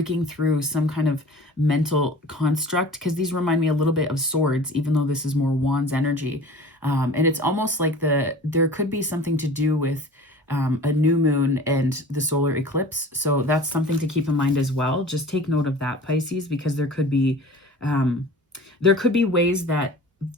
through some kind of mental construct, because these remind me a little bit of swords, even though this is more wands energy. And it's almost like there could be something to do with a new moon and the solar eclipse. So that's something to keep in mind as well. Just take note of that, Pisces, because there could be ways that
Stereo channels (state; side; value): normal; both; correlation 0.41